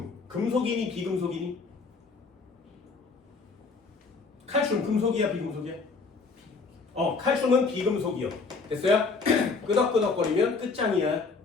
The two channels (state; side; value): quieter; right; 4.4 dB